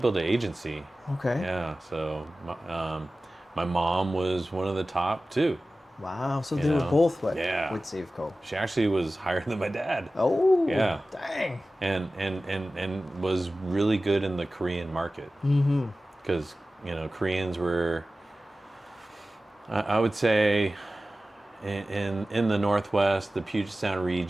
an agency. Okay. Yeah, so my mom was one of the top too. Wow. So You they were know? both with Yeah. Safeco. She actually was higher than my dad. Oh. Yeah. Dang. And was really good in the Korean market. Mm-hmm. Because, Koreans were, I would say, in the Northwest, the Puget Sound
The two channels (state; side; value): normal; both; correlation 0.96